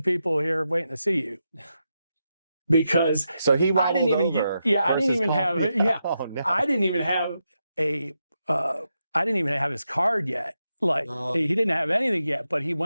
people here waiting to see you. Because so he I didn't even over I didn't even have oh, no. I didn't even have I didn't even have his card yet. He didn't have anything yet, but he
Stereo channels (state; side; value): inverted; both; correlation -0.86